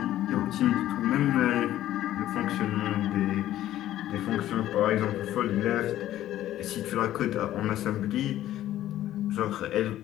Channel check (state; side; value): quieter; right; 13.3 dB